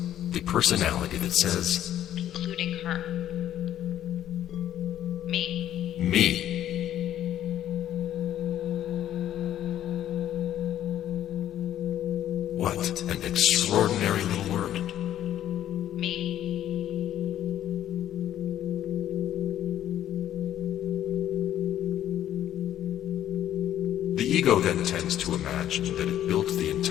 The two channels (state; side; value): quieter; right; 11.6 dB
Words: the personality that says, Including her. Me. me. What an extraordinary little word. Me. The ego then tends to imagine that it built the